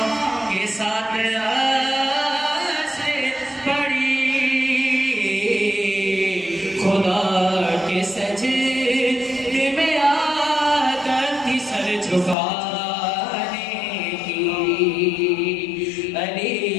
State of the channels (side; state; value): right; drops out; at 12.4 s